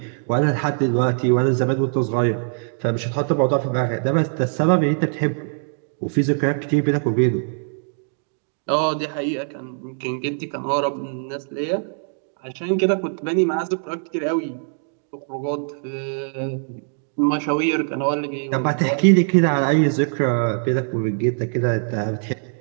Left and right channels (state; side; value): silent; left; 64 dB below the other